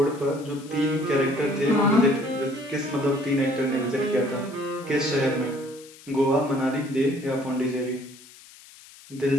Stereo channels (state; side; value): noise; left; hiss, 21 dB below the sound